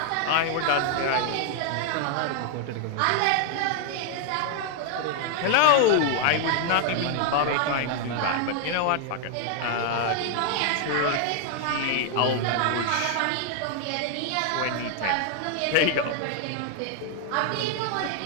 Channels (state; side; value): different; both; correlation 0.00